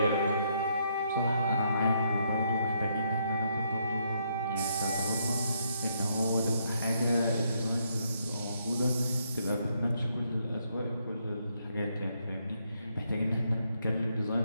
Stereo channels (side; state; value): both; inverted; correlation -0.74